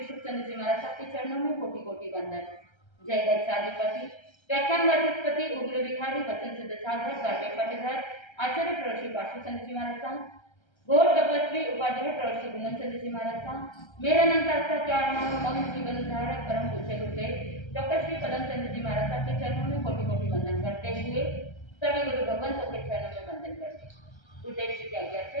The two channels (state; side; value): late; right; 1.3 ms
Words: सुखचंद्र जी महाराज साहब के चरणों में कोटि कोटि वंदन। जय गच्छाधिपति व्याख्यान वाचस्पति उग्र विहारी वचन सिद्ध साधक 12वें पटेदार आचार्य प्रवश्री पार्श्वचंद्र जी महाराज साहब गौर तपस्वी उपाध्याय प्रवश्री गुणन चंद्र जी महाराज साहब मेरा नाम का क्या नाम मौन जीवन धारक परम पूज्य गुरुदेव डॉक्टर श्री पदम चंद्र जी महाराज साहब के चरणों में कोटि कोटि वंदन करते हुए सभी गुरु भगवंतों के चरणों में वंदन करते गुरुदेव श्री की आज्ञा